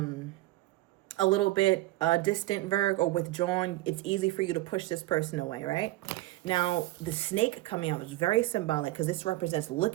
distant, Virg, or withdrawn. It's easy for you to push this person away, right? Now, the snake coming out is very symbolic because this represents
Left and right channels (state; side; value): quieter; left; 18.2 dB